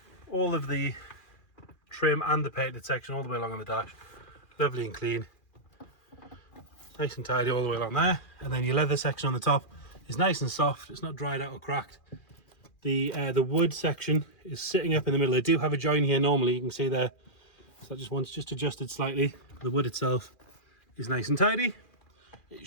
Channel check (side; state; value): right; late; 2.4 ms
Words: All of the trim and the painted section all the way along on the dash, lovely and clean. Nice and tidy all the way along there. And then your leather section on the top is nice and soft. It's not dried out or cracked. The wood section is sitting up in the middle. They do have a join here normally, you can see there. So that just adjusted slightly. The wood itself is nice and tidy. It